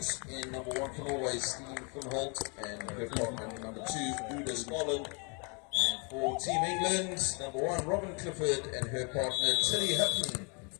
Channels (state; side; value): quieter; right; 34.8 dB